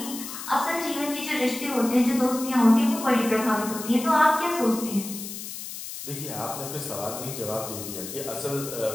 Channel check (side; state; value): left; noise; hiss, 9 dB below the sound